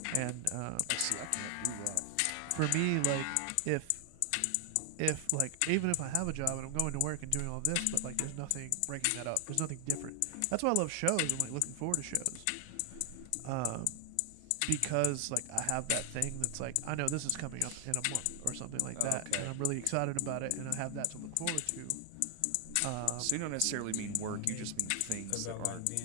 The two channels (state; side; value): different; both; correlation 0.00